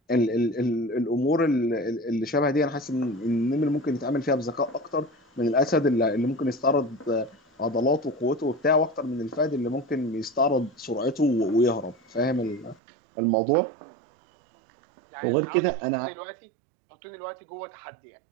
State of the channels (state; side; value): drops out; left; at 12.8 s